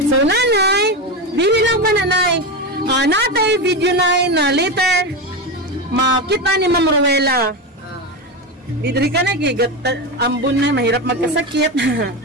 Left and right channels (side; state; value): both; normal; correlation 0.17